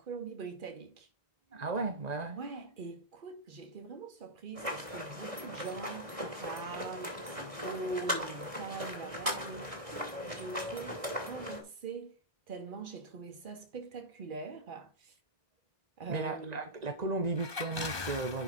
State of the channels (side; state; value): left; late; 1.6 ms